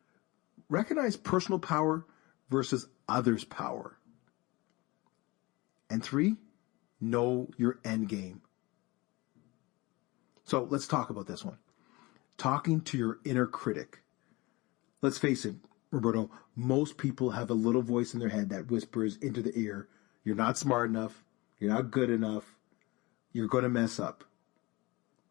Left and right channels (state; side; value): quieter; right; 23.0 dB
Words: recognize personal power versus others' power. And 3, know your end game. So let's talk about this one. Talking to your inner critic. Let's face it, Roberto, most people have a little voice in their head that whispers into the ear, you're not smart enough, you're not good enough, you're going to mess up.